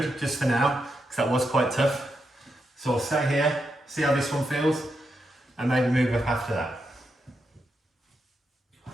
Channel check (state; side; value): normal; both; correlation 0.84